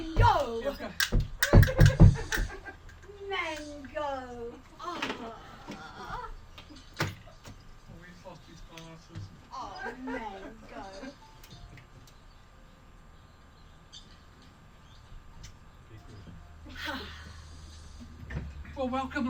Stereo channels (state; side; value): identical; both; correlation 1.00